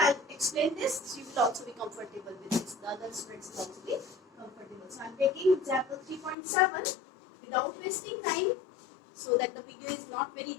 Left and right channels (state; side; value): drops out; right; at 6.4 s